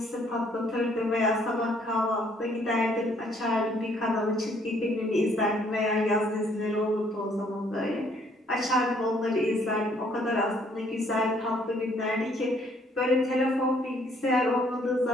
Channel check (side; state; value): both; normal; correlation 0.65